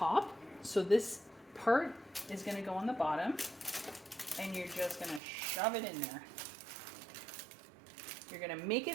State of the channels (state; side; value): drops out; left; at 5.2 s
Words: So this part is gonna go on the bottom, and you're just gonna shove it in there. You're gonna make